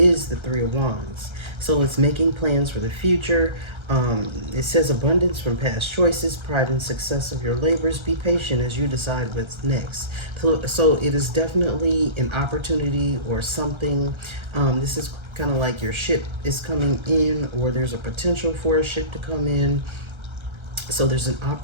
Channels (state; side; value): late; left; 1.3 ms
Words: the Three of Wands. So it's making plans for the future. It says abundance from past choices, pride and success of your labors. Be patient as you decide what's next. So it is definitely an opportunity or something. This is kind of like your ship is coming in, or there's a potential for a ship to come in. So there's an